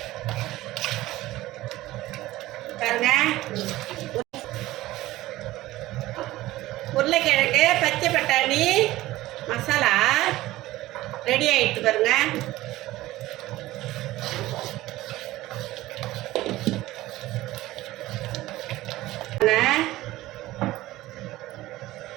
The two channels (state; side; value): quieter; left; 16.9 dB